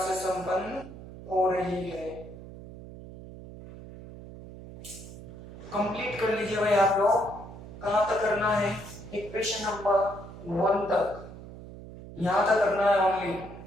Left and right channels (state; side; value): noise; right; hum, 14 dB below the sound